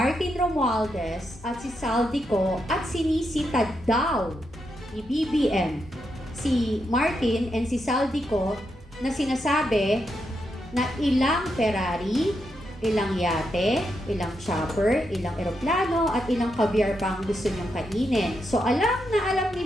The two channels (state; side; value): normal; both; correlation 0.83